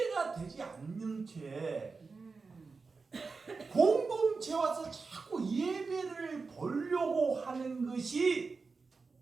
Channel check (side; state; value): left; quieter; 4.4 dB